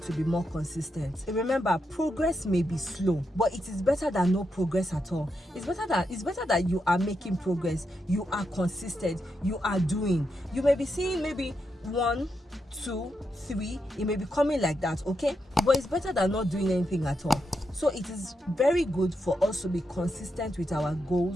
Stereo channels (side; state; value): both; normal; correlation 0.84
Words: to be more consistent. And remember, progress may be slow, but it is better than no progress at all. It's better that you are making progress, you are consistent, you are doing. You may be seeing maybe 1, 2, 3, it may be coming like that, okay? But it's better than not doing anything at all. So it is very good for us to be consistent with our